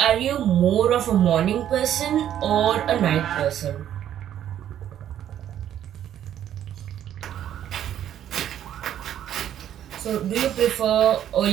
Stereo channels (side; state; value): left; quieter; 10.7 dB